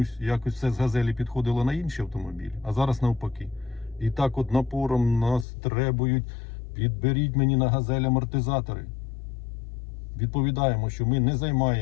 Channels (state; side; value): drops out; right; at 5.5 s